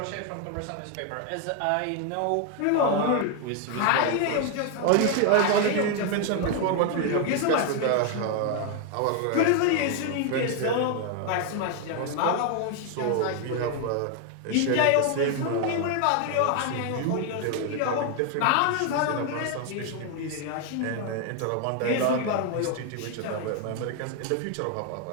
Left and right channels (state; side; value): different; both; correlation 0.01